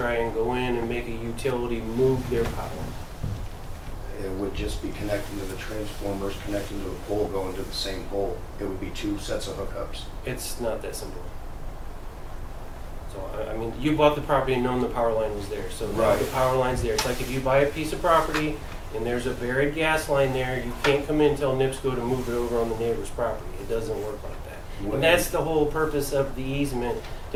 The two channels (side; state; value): both; identical; correlation 1.00